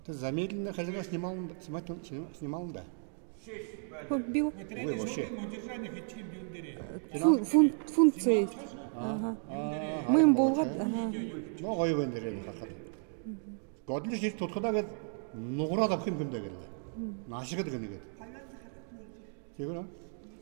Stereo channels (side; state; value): left; silent; 55 dB below the other